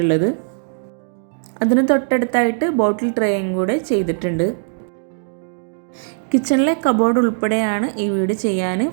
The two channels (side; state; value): left; silent; digital silence